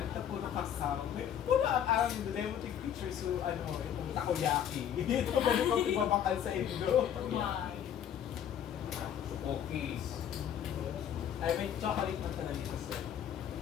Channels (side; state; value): right; quieter; 9.5 dB